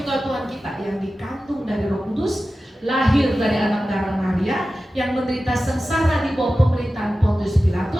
Tuhan kita, yang dikandung dari Roh Kudus, lahir dari anak darah Maria, yang menderita sengsara di bawah pemerintahan Pontius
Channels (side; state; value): both; normal; correlation 0.94